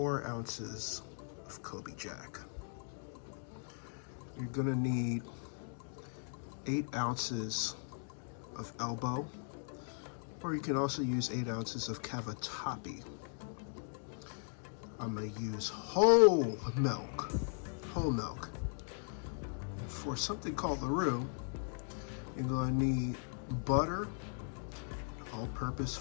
ounces of Coby Jack. You're going to need 8 ounces of elbow, or you can also use 8 ounces of cavatappi. I'm going to use whole milk. For something called the roux, you're going to need butter, all-purpose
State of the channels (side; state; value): right; silent; 52 dB below the other